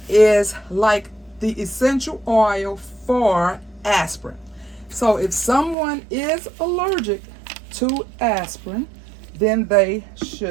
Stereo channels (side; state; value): left; drops out; at 5.8 s